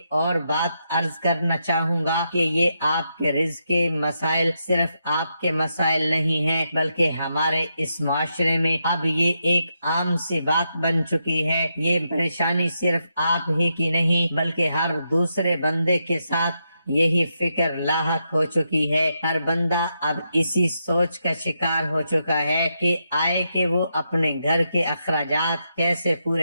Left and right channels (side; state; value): both; inverted; correlation -0.83